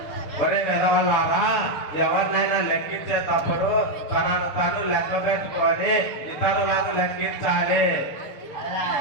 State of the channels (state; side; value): late; right; 6.6 ms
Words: ఒరే వెదవల్లారా, ఎవరినైనా లెక్కించేటప్పుడు తనను తను లెక్క పెట్టుకొని ఇతరులను లెక్కించాలి.